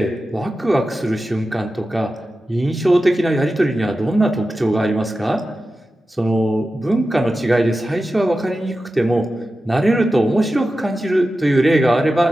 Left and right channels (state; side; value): normal; both; correlation 0.93